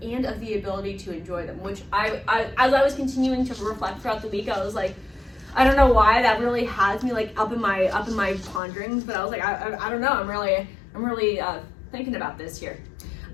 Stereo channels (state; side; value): drops out; right; at 8.6 s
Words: and of the ability to enjoy them, which I as I was continuing to reflect throughout the week, I was like, I don't know why that really has me like up in my ponderings, but I was like, I don't know. I'm really thinking about this here,